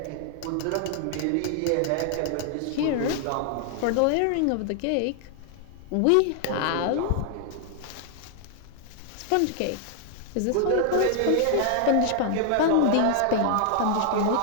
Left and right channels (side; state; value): both; different; correlation 0.00